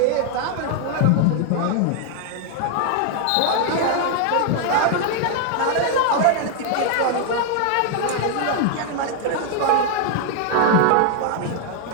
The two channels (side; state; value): both; different; correlation 0.00